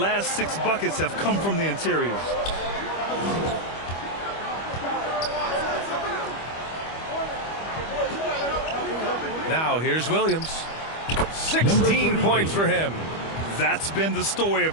6 buckets have come from the interior. Now here's Williams. 16 points for him. That's been the story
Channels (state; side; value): late; right; 25 ms